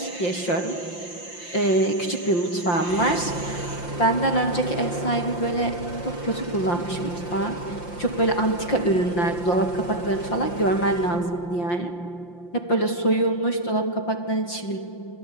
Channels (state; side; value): late; right; 5.8 ms